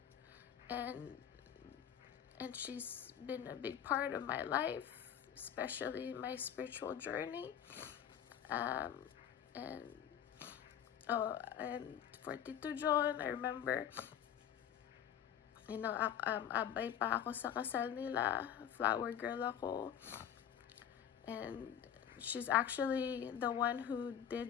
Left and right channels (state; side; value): quieter; right; 9.5 dB